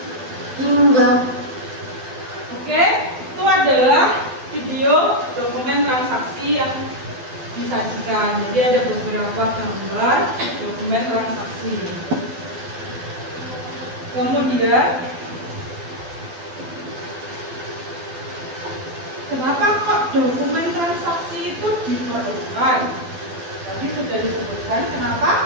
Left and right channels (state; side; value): late; left; 12 ms